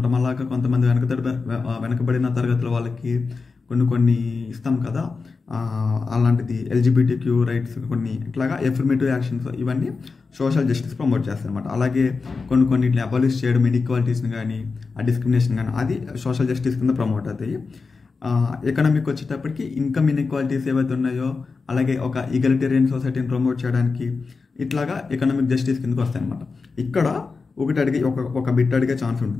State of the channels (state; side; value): quieter; right; 4.5 dB